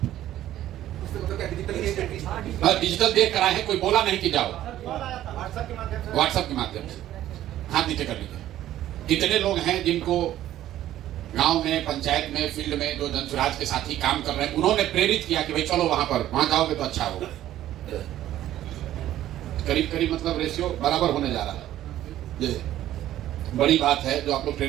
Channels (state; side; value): quieter; left; 13.0 dB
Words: डिजिटल देख कर आए हैं, कोई बोला नहीं कि जाओ, व्हाट्सएप के माध्यम से हाथ नीचे कर लीजिए। कितने लोग हैं जिनको गांव में, पंचायत में, फील्ड में जो जन स्वराज के साथी काम कर रहे हैं, उन्होंने प्रेरित किया कि भाई चलो वहां पर, वहां जाओगे तो अच्छा होगा। करीब करीब मतलब रेशियो बराबर होने जा रहा है। ये बड़ी बात है जो आप लोग